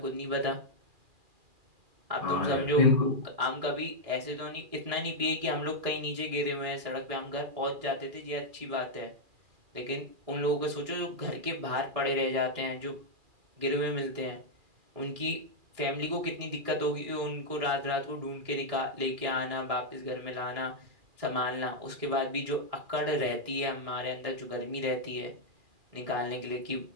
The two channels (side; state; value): left; late; 2.4 ms